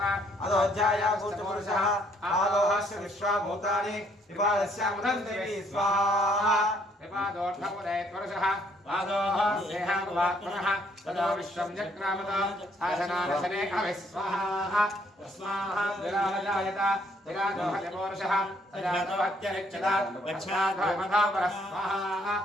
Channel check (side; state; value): both; normal; correlation 0.66